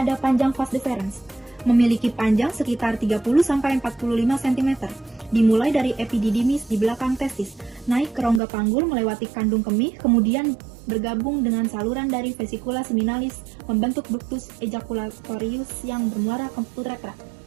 panjang vas deferens. Memiliki panjang sekitar 30-45 cm, dimulai dari epididymis di belakang testis, naik ke rongga panggul melewati kandung kemih, kemudian bergabung dengan saluran dari vesikula seminalis membentuk ductus ejaculatorius yang bermuara ke uretra.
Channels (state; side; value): drops out; left; at 8.4 s